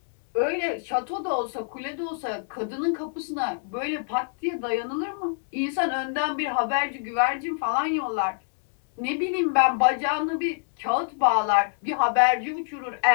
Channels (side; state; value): right; silent; digital silence